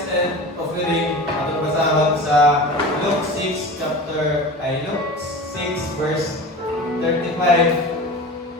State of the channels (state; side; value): normal; both; correlation 0.34